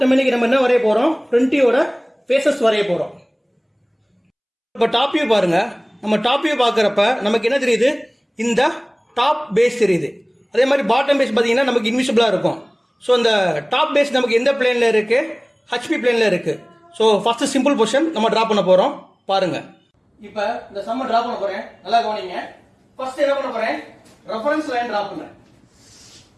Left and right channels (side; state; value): both; identical; correlation 1.00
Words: நம்ம என்ன வரைய போறோம்? ஃப்ரண்ட் வியூவோட ஃபேसेस வரைய போறோம். இப்ப டாப் வியூ பாருங்க. நம்ம டாப் வியூ பார்க்கறப்ப நமக்கு என்ன தெரியுது? இந்த டாப் பேஸ் தெரியுது. அதே மாதிரி பாட்டம் பேஸ் பாத்தீங்கன்னா நமக்கு இன்விசிபிளா இருக்கும். சோ இந்த டாப் பேஸ் நமக்கு எந்த பிளேன்ல இருக்கு? HP பிளேன்ல இருக்கு. சோ ஃபர்ஸ்ட் சிம்பிள் பொசிஷன் நம்ம டிரா பண்ண போறோம். பாருங்க. இப்ப இந்த சம்ம டிரா பண்ண போறேன். நல்லா கவனிங்க. ஃபர்ஸ்ட் என்ன பண்ண போறேன்? ரெஃபரன்ஸ் லைன் டிரா பண்றேன்.